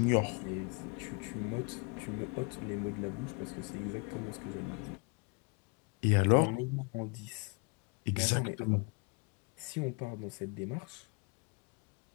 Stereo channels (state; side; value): quieter; right; 32.6 dB